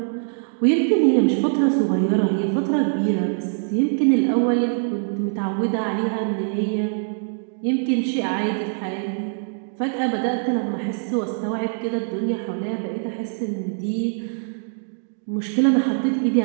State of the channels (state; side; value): silent; left; digital silence